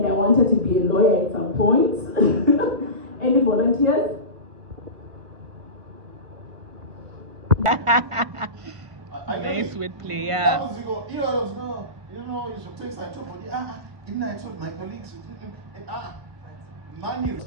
I wanted to be a lawyer at some point. Any volunteers? Nice wordplay, yeah. You know, you should take side to body. Didn't I told my colleagues? Money.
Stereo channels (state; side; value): late; left; 1.5 ms